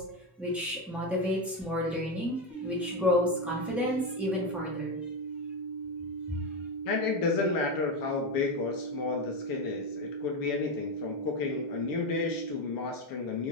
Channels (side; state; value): both; normal; correlation 0.12